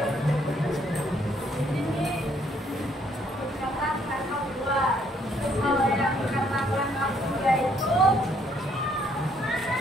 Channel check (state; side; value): normal; both; correlation 0.67